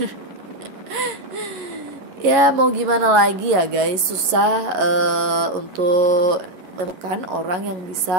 Ya mau gimana lagi ya guys, susah untuk menemukan orang yang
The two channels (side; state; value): left; late; 11 ms